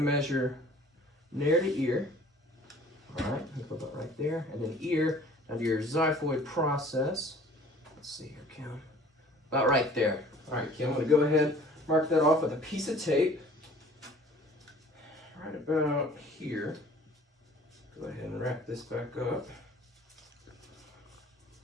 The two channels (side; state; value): both; normal; correlation 0.50